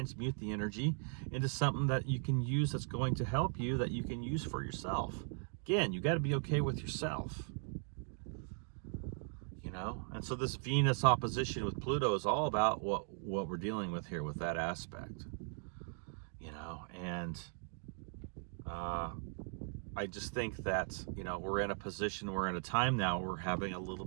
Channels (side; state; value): left; silent; 52 dB below the other